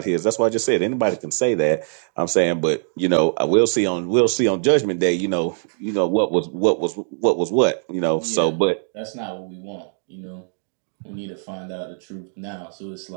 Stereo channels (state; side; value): silent; left; digital silence